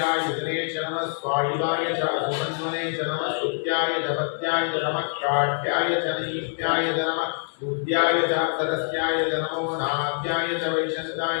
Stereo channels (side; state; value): right; silent; 62 dB below the other